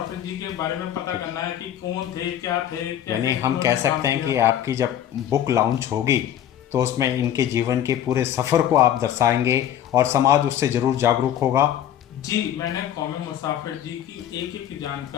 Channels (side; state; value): right; quieter; 10.7 dB